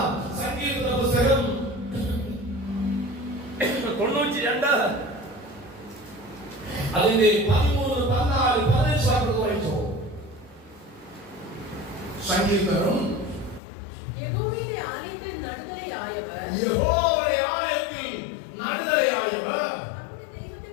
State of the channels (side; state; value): right; drops out; at 13.6 s